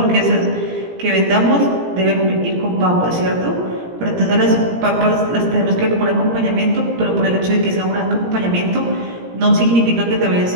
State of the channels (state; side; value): late; left; 17 ms